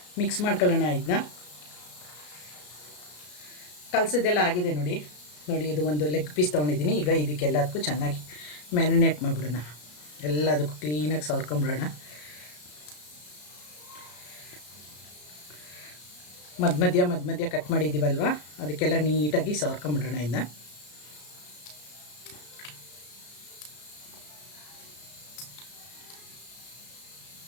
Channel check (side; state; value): right; late; 33 ms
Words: ಮಿಕ್ಸ್ ಮಾಡ್ಕೊಳ್ಳೋಣ. ಇದನ್ನ ಕಲಸಿದ್ದೆಲ್ಲ ಆಗಿದೆ. ನೋಡಿ, ಇದು ಒಂದು ಲೆಗ್ ಪೀಸ್ ತೊಗೊಂಡಿದ್ದೀನಿ. ಈಗ ಇದಕ್ಕೆಲ್ಲದಕ್ಕೂ ಚೆನ್ನಾಗಿ ಮ್ಯಾರಿನೇಟ್ ಮಾಡಿಬಿಡೋಣ. ಎಲ್ಲದಕ್ಕೂ ಕ್ಲೀನಾಗಿ ಸವರ್ಕೊಂಬಿಡೋಣ. ಮಧ್ಯ ಕಟ್ ಮಾಡಿದ್ದೀವಲ್ವ, ಅದಕ್ಕೆಲ್ಲ ನೀಟಾಗಿ ಸವರ್ಕೊಂಬಿಡೋಣ. ಇದನ್ನ